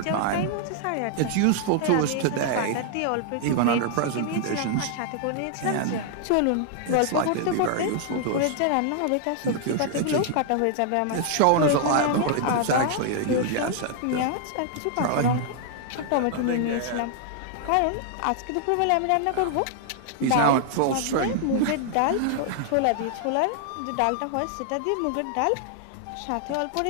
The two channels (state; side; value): different; both; correlation -0.01